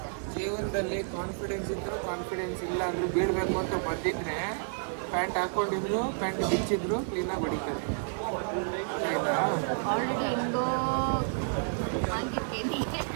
ಜೀವನದಲ್ಲಿ ಕಾನ್ಫಿಡೆನ್ಸ್ ಇದ್ರು ಕಾನ್ಫಿಡೆನ್ಸ್ ಇಲ್ಲ ಅಂದ್ರೂ ಬೀಳ್ಬೇಕು ಅಂತ ಬಂದಿದ್ರೆ ಪ್ಯಾಂಟ್ ಹಾಕೊಂಡಿದ್ರು, ಪ್ಯಾಂಟ್ ಬಿಚ್ಚಿದ್ರು ಕ್ಲೀನಾಗಿ ಹೊಡಿತಾರೆ. ಆಯ್ತಾ? ಆಲ್ರೆಡಿ ಹೆಂಗೋ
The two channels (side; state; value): left; silent; 58 dB below the other